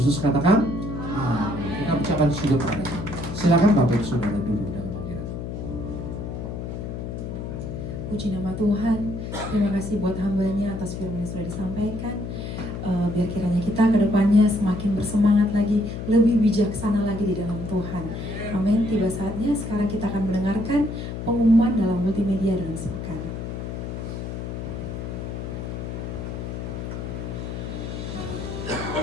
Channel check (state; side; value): noise; left; hum, 6 dB below the sound